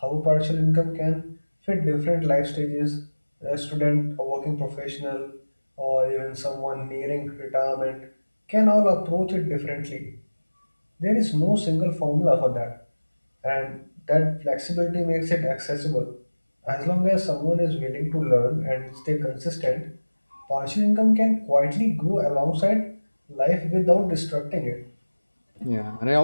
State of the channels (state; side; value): inverted; both; correlation -1.00